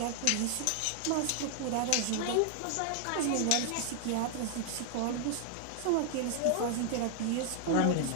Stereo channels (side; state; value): both; different; correlation 0.00